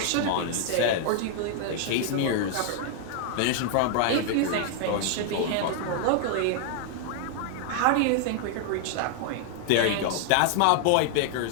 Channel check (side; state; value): both; different; correlation 0.00